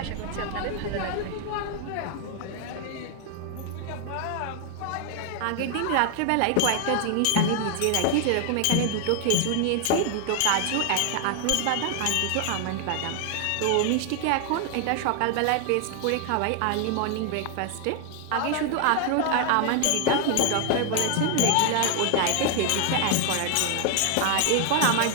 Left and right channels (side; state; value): both; different; correlation 0.00